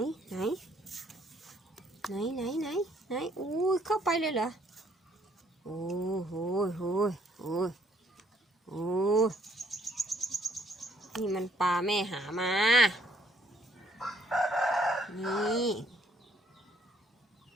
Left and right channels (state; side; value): normal; both; correlation 0.65